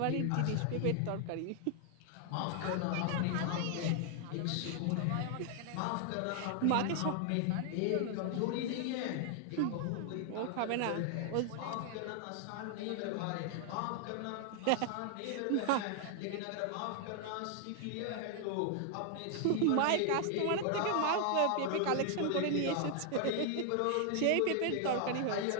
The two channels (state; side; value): different; both; correlation 0.00